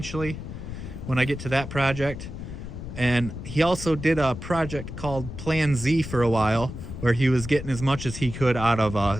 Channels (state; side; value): noise; left; rumble, 9 dB below the sound